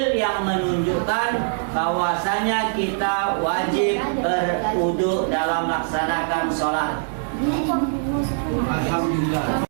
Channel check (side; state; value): left; silent; digital silence